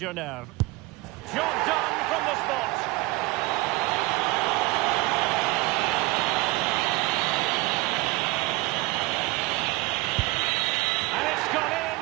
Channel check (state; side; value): quieter; left; 21.6 dB